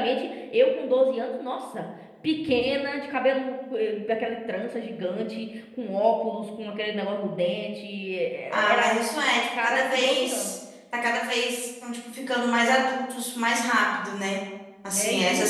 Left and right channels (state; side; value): identical; both; correlation 1.00